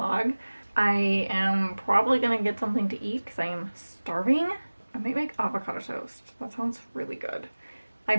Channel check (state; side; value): inverted; both; correlation -1.00